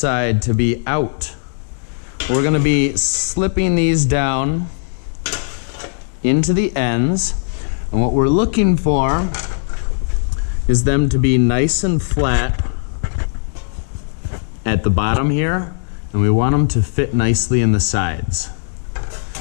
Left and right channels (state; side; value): silent; right; digital silence